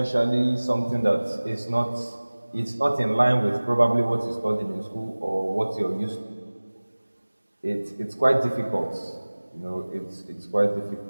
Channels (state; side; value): inverted; both; correlation -1.00